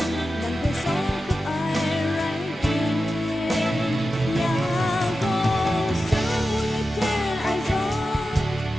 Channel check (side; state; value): both; normal; correlation 0.92